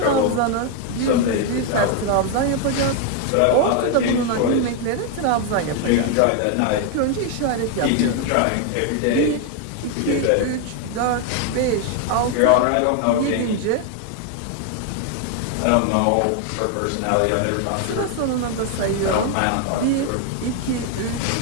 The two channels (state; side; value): different; both; correlation 0.01